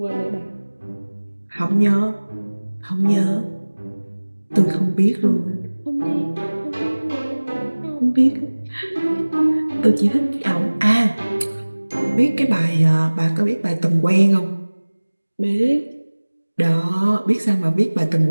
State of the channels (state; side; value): inverted; both; correlation -1.00